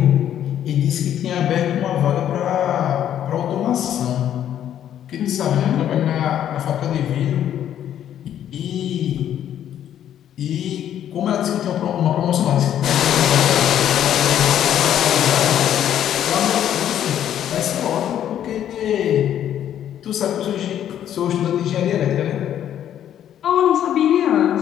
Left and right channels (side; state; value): right; quieter; 10.5 dB